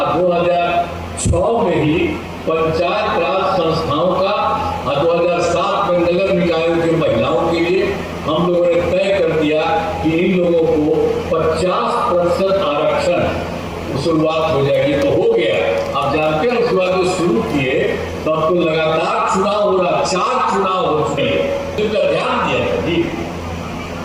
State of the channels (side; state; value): both; identical; correlation 1.00